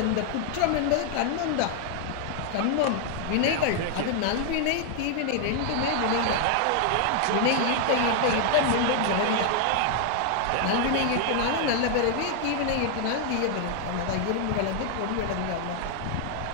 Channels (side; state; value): both; different; correlation 0.00